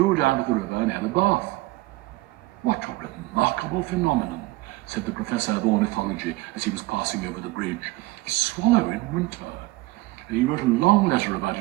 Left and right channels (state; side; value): quieter; left; 20.3 dB